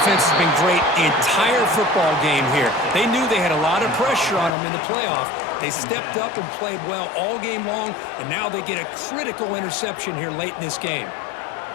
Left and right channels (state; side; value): drops out; right; at 4.5 s